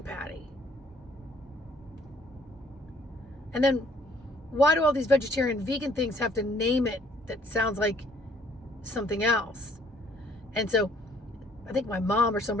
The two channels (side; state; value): both; normal; correlation 0.61